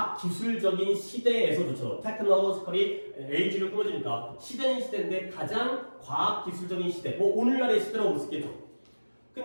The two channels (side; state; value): both; inverted; correlation -1.00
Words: 기술적인 시대에서조차 테크놀로지컬이 에이지를 꾸며주니까 시대는 시대인데 가장 과학 기술적인 시대 뭐 오늘날의 시대라고 볼 수 있겠죠.